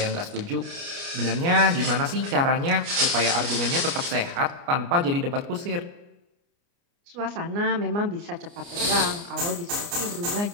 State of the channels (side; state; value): left; late; 29 ms